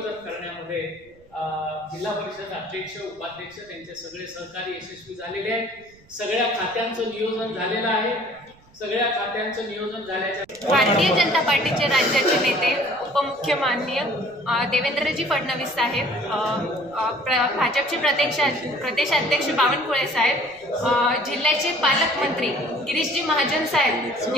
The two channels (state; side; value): noise; right; rumble, 28 dB below the sound